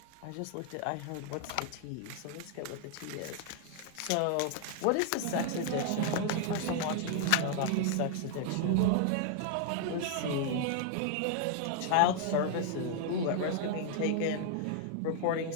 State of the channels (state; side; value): different; both; correlation 0.00